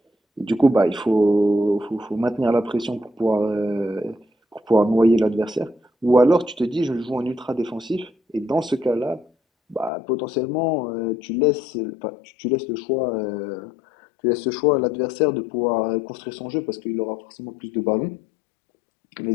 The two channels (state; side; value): drops out; right; at 9.9 s